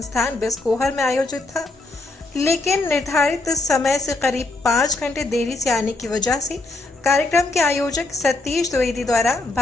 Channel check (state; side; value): quieter; right; 3.1 dB